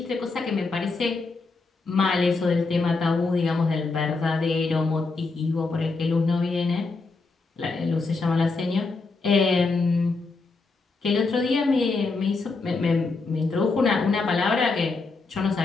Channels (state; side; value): quieter; right; 3.9 dB